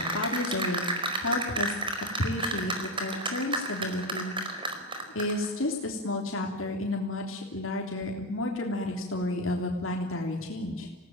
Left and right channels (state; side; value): normal; both; correlation 0.13